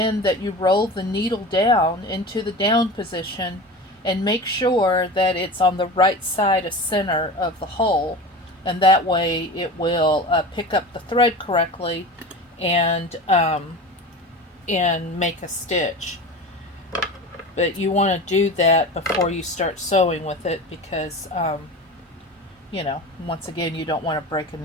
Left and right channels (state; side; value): normal; both; correlation 0.31